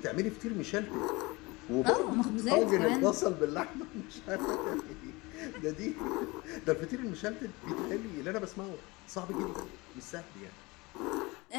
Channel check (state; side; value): quieter; right; 23.9 dB